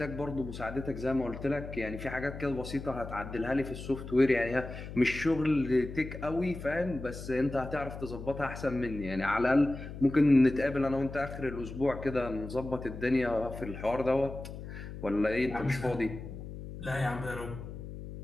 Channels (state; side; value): noise; left; hum, 10 dB below the sound